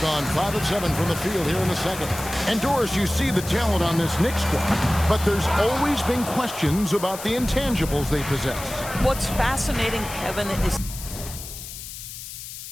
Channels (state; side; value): noise; left; hiss, 11 dB below the sound